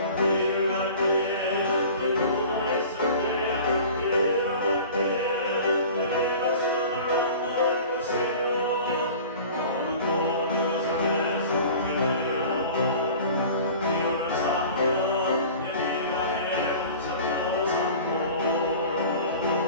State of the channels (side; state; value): both; inverted; correlation -0.41